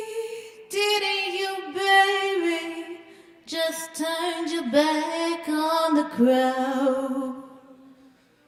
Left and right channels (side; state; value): both; identical; correlation 1.00